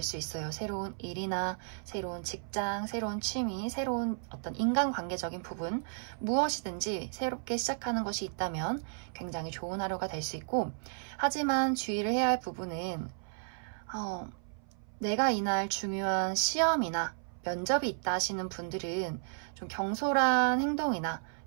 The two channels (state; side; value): silent; left; 56 dB below the other